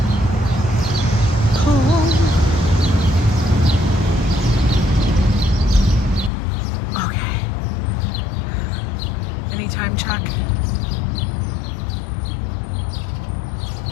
Cool. Okay. Any time check?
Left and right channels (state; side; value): drops out; right; at 6.3 s